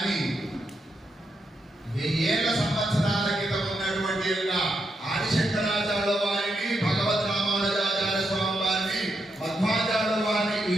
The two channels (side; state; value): both; normal; correlation 0.82